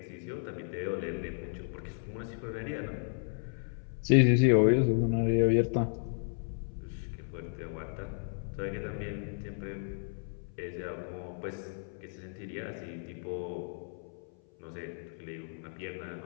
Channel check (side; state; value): right; silent; 55 dB below the other